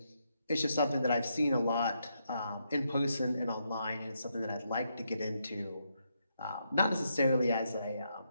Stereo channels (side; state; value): both; inverted; correlation -0.80